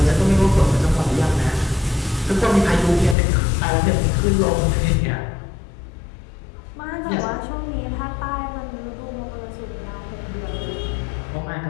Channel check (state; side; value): drops out; right; at 3.2 s